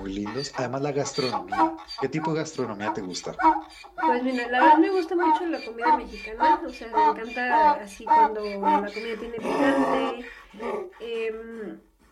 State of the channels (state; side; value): identical; both; correlation 1.00